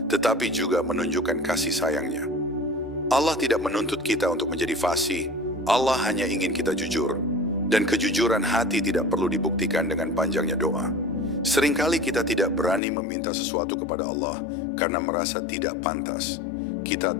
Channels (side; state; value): right; drops out; at 12.8 s